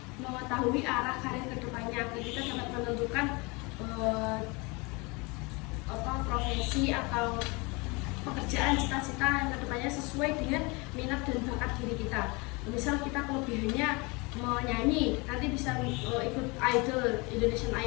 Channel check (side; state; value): right; quieter; 27.5 dB